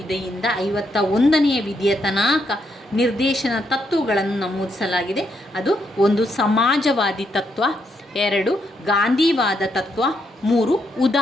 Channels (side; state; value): both; normal; correlation 0.77